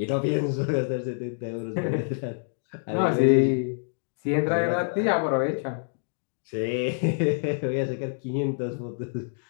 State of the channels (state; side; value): silent; right; digital silence